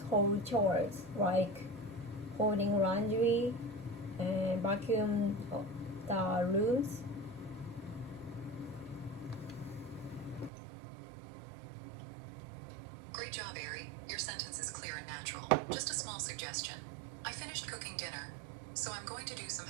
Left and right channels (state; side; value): drops out; left; at 10.5 s